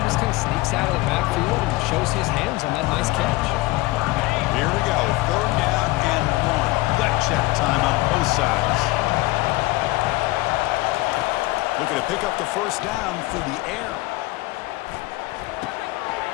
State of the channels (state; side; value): quieter; right; 20.5 dB